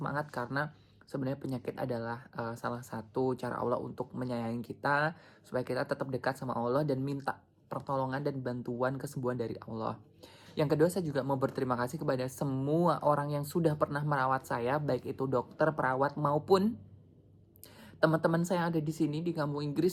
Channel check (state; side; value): identical; both; correlation 1.00